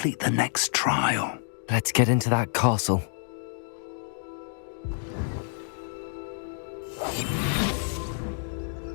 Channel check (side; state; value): right; silent; digital silence